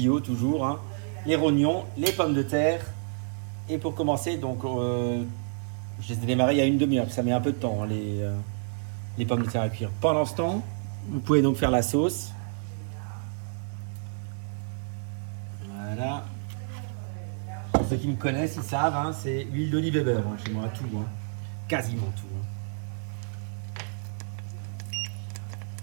toujours, les rognons, les pommes de terre. Et pour commencer, donc je les ai démarrés il y a une demi-heure, ça met un peu de temps les pommes de terre à cuire. Pendant ce temps, vous pouvez donc faire la sauce. Voilà. Pour ceux qui me connaissent, ils savent, c'est huile d'olive et beurre chez moi, tout, quasiment tout.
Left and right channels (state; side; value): silent; left; digital silence